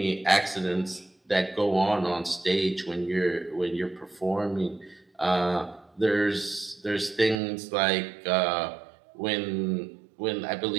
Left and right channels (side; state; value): left; drops out; at 7.4 s